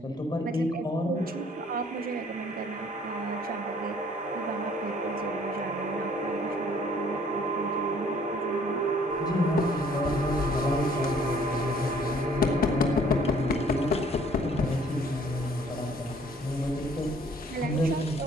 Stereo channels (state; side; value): normal; both; correlation 0.58